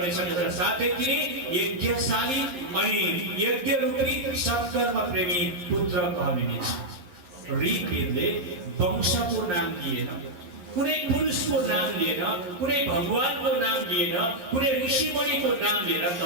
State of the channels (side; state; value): left; late; 11 ms